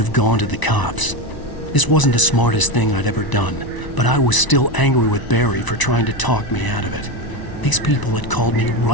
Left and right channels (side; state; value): right; late; 1.0 ms